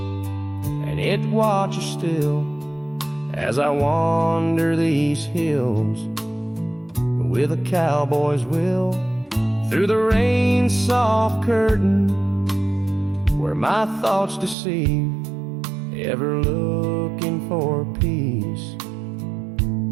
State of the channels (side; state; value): left; drops out; at 14.6 s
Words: and it watches still as I wander these hills with a cowboy's will, through the rain's soft curtain where my thoughts deceive, ever looking for peace